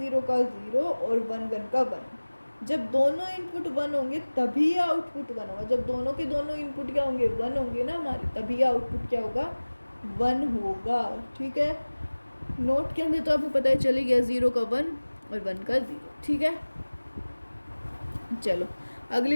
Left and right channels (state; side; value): inverted; both; correlation -1.00